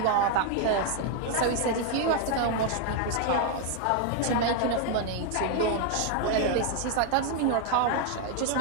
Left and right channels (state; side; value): different; both; correlation 0.00